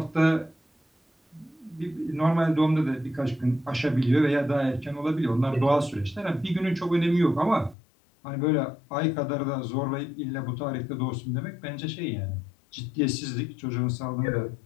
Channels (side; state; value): right; drops out; at 7.8 s